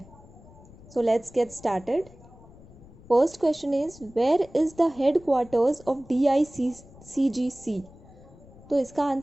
So let's get started. First question is, where is the headquarters of DICGC? तो इसका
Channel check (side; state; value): left; noise; rumble, 22 dB below the sound